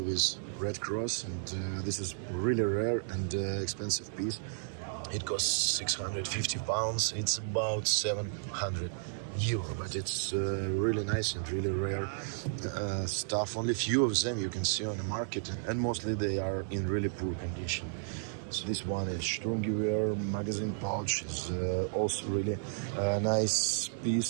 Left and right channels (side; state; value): left; silent; 56 dB below the other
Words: with red cross, and this is really rare and expensive piece. It costs 650 pounds. It's about 700 euro, but it's really nice and really rare stuff. Only few of them you can see on the market, and mostly they are in really poor condition. So this one is Sturmgewehr magazine pouch, is also really nice